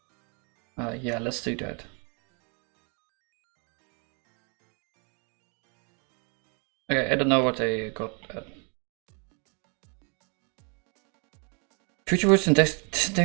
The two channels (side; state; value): left; quieter; 35.6 dB